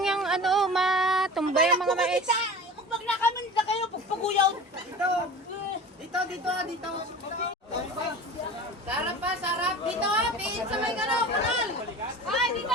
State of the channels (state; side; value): normal; both; correlation 0.36